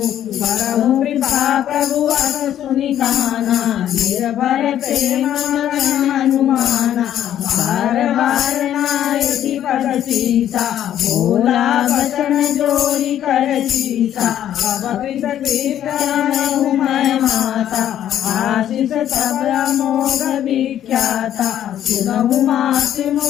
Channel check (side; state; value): right; quieter; 11.0 dB